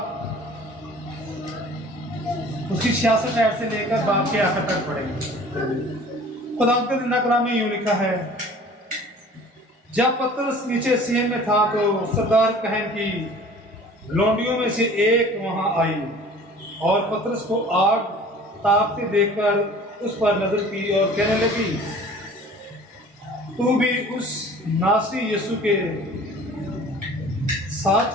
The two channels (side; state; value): both; normal; correlation 0.47